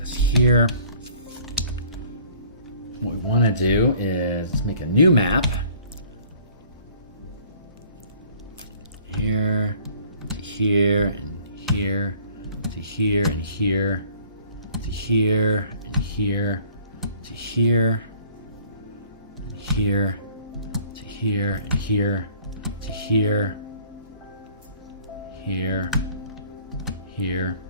here. What we want to do is make a new map. Here, to here, and here, to here, and here, to here, and here, to here, and here, to here, and here, to here, here, here,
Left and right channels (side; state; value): both; inverted; correlation -0.54